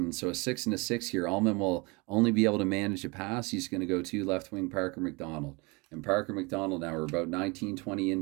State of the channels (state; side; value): quieter; left; 27.3 dB